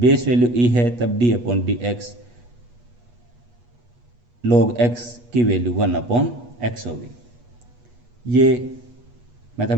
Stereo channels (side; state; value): left; late; 8.3 ms